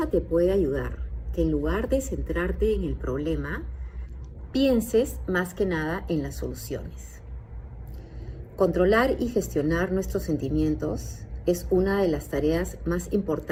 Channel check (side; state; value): both; identical; correlation 1.00